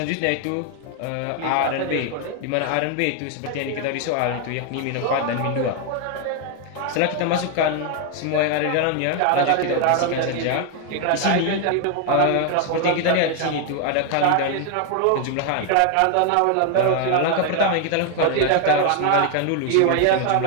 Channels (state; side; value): different; both; correlation 0.00